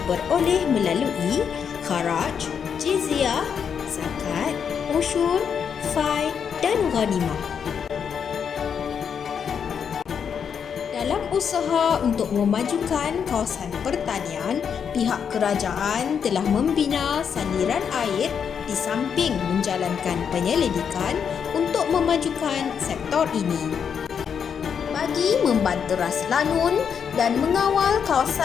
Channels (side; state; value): right; quieter; 7.2 dB